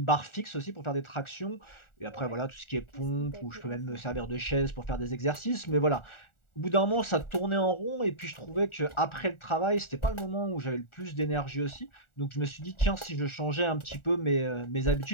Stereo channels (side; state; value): right; late; 1.4 ms